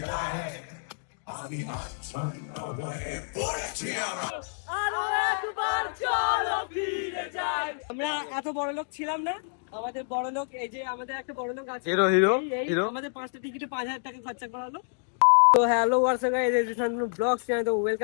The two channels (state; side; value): silent; right; digital silence